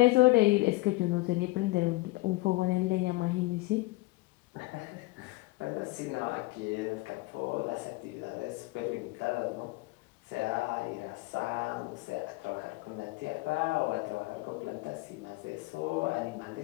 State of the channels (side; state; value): right; quieter; 21.6 dB